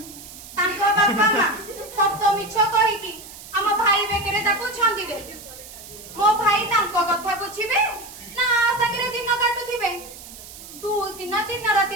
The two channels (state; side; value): noise; right; hiss, 16 dB below the sound